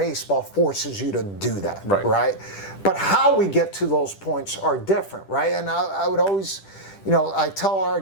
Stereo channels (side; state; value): right; late; 10 ms